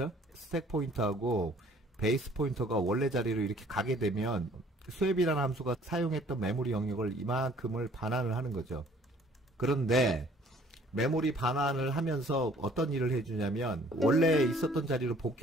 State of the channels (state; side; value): normal; both; correlation 0.56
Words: 스택 포인터하고 베이스 포인터가 원래 자리로 이렇게 가게 되면 스왑이라는 함수가 사용했던 메모리 영역을 이만큼을 반환을 하는 거죠. 그런데 메모리 반환을 하면서 어떤 일을 해주냐면 원래 있었던 자리로